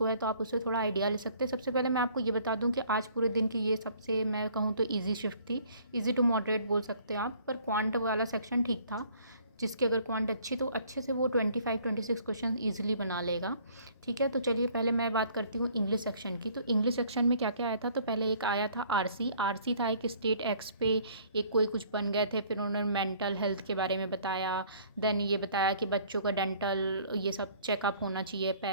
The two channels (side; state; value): both; inverted; correlation -0.57